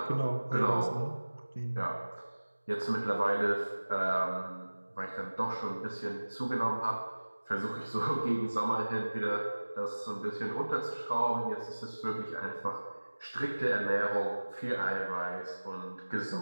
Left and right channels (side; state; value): both; inverted; correlation -1.00